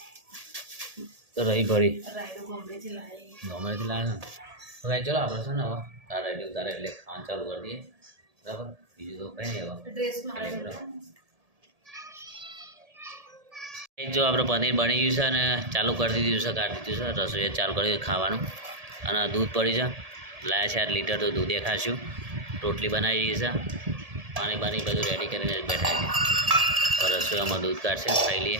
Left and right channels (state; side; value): late; left; 1.7 ms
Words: તો રહી ભરી ગમેથી લાવે ને તો ભાઈ ચલો આપણે છે ને હવે તારા એટલે ઉતારે એટલે ખાવાનું ચાલુ કરી દઈએ. બરાબર બીજું તો કંઈ નહીં. હવે જો આપણે પનીર બની ગયું છે અને ચાલુ કરી દીધું છે, કાઢી દીધું છે. રસોઈ ચાલુ કરી ખાવાનું. અને દૂધ પડી છે લાયા છે 8 લીટર તો દૂધે ખાશું. રોટલી બનાવી દીધી છે. પાણી બાણી બધું રેડી કરીને બેઠા છે. રસોઈમાં દૂધ કાઢશે ખાઈ લઈએ.